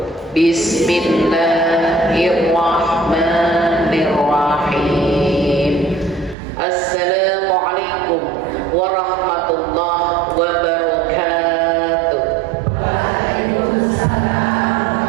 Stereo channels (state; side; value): drops out; left; at 6.4 s